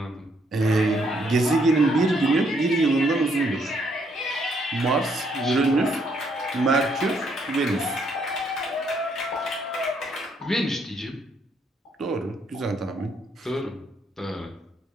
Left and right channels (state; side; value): normal; both; correlation 0.71